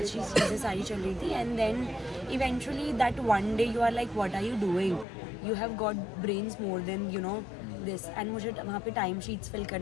चीज़ें सारी चल रही थी. And then eventually that one day you are like, what are you doing? You have got brains more than, you know, this. And मुझे वहाँ पे टाइम शीट्स फिल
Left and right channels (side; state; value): right; drops out; at 5.1 s